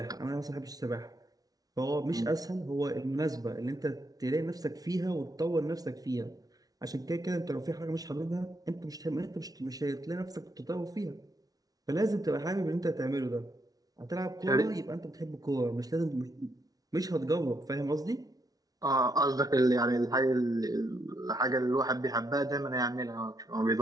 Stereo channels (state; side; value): late; left; 0.18 ms